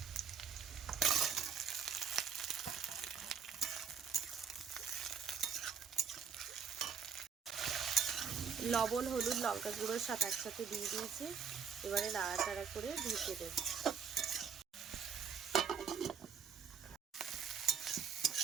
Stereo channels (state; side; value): quieter; left; 6.8 dB